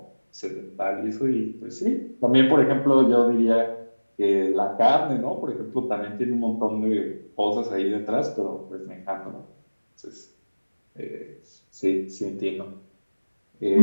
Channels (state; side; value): inverted; both; correlation -1.00